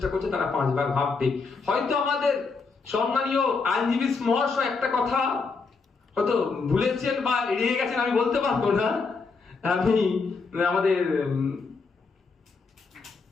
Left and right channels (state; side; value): quieter; right; 4.5 dB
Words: করছে তারা 5 বার ভাববে। হয়তো আমাদের সম্মানীয় আইনজীবী মহাশয় একটা কথা হয়তো ভুলেছেন বা এড়িয়ে গেছেন, আমি বলতে পারবো না। আমি আমাদের